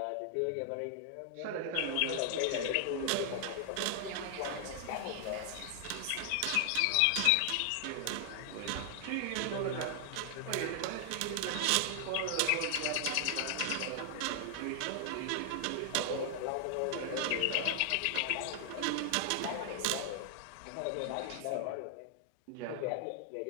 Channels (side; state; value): both; different; correlation 0.00